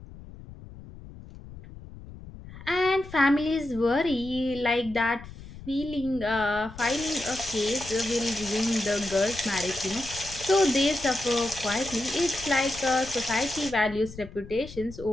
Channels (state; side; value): noise; left; rumble, 16 dB below the sound